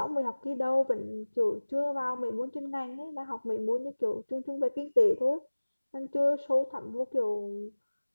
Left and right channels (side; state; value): both; inverted; correlation -1.00